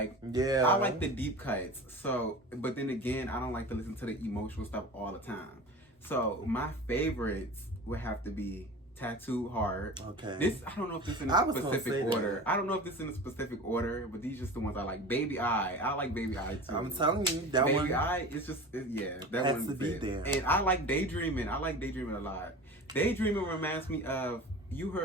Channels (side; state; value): both; normal; correlation 0.35